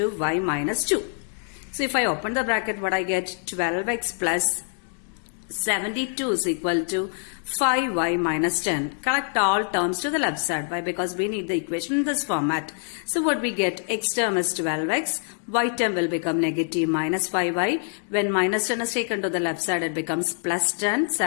y minus 2. So if I open the bracket, what I get, 12x plus 72 is equal to 5y minus 10. Collect all terms to the left side. Why? Because we need the equation in this format. So what we get, x term is 12x, y term will become negative minus 5y. When minus 10 is taken to the left side, it becomes plus 10.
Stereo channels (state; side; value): silent; right; 55 dB below the other